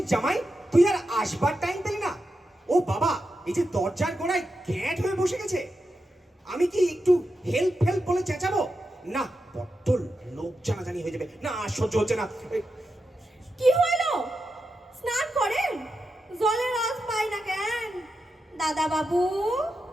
জামাই, তুই আর আসবার টাইম পেলি না? ও বাবা, এই যে দরজার গোড়ায় গ্যাঁট হয়ে বসে গেছে, আমি কি একটু হেল্প হেল্প বলে চেঁচাবো? না, বড্ড লোক জানাজানি হয়ে যাবে। না, সহ্য হচ্ছে না। কি হইলো? স্নান করেন, জলের আজ পাই না কেন? দাদা বাবু,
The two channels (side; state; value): both; normal; correlation 0.88